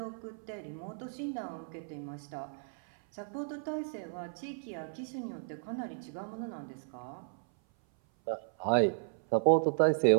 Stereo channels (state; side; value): silent; left; 55 dB below the other